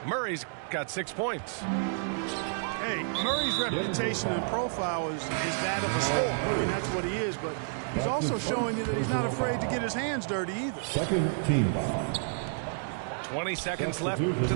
Murray's got 6 points. Hey, Murray's reputation and profile is that of a scorer. I mean, that's what he is, but he's also showing you that he's not afraid to get his hands dirty either. Second team foul. 20 seconds left in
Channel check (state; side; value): silent; left; digital silence